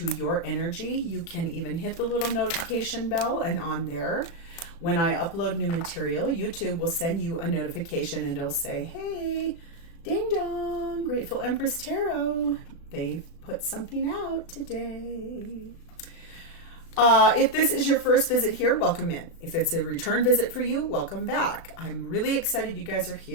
your energy, you can even hit the little notification bell, and on there, when I upload new material, YouTube will send you a notification and it'll say, hey, ding dong, Grateful Empress Tarot. They've put something out today. If this is your first visit here, welcome in. If it's a return visit for you, welcome back. I'm really excited you guys are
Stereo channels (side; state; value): right; late; 36 ms